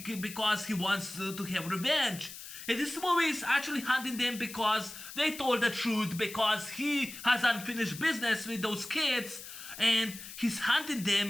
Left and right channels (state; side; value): noise; left; hiss, 12 dB below the sound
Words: because he wants to have revenge. And this movie is actually hunting them because they told the truth, because he has unfinished business with those kids, and he's hunting